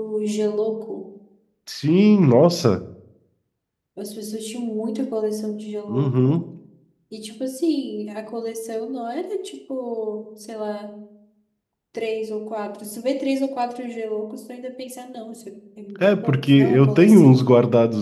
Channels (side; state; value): both; identical; correlation 1.00